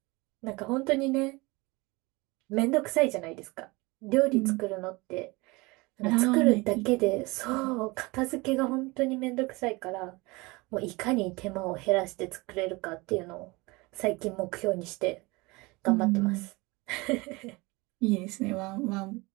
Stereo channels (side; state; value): left; quieter; 24.3 dB